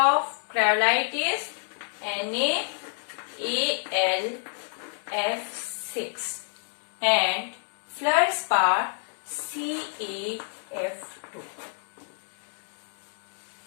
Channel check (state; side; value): silent; right; digital silence